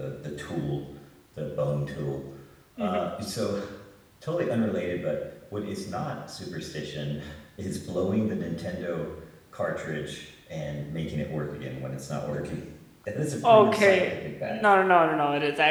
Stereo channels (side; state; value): both; identical; correlation 1.00